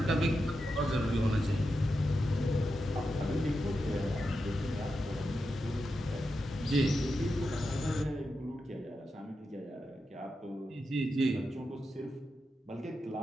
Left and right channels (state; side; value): normal; both; correlation 0.88